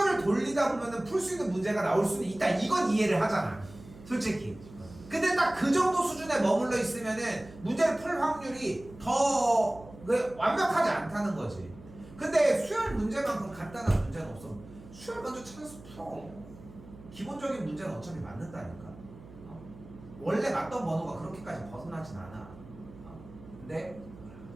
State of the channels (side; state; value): right; noise; hum, 19 dB below the sound